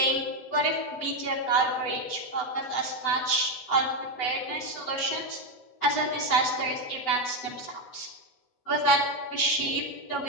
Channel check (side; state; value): right; late; 8.1 ms